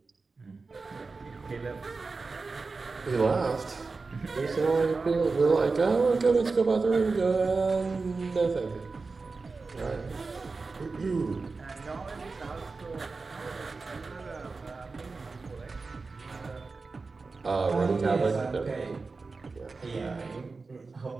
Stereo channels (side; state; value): left; quieter; 4.1 dB